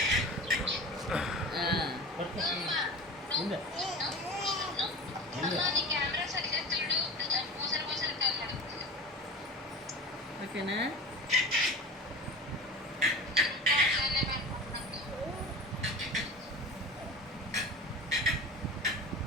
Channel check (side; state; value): both; normal; correlation 0.33